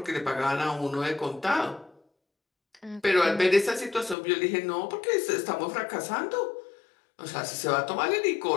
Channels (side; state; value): right; drops out; at 4.2 s